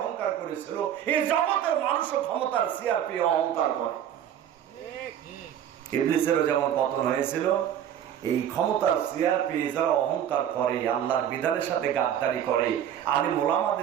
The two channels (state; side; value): quieter; left; 10.0 dB